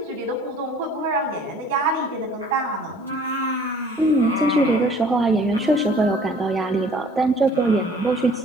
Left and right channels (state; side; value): normal; both; correlation 0.53